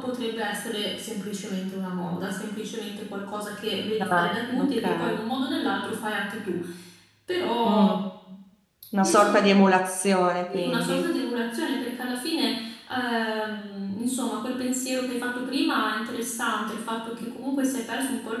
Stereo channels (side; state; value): both; identical; correlation 1.00